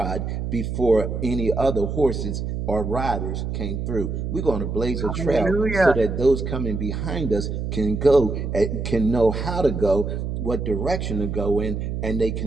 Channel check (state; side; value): noise; right; hum, 3 dB below the sound